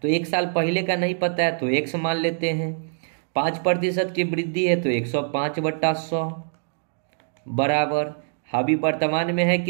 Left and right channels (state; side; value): silent; left; digital silence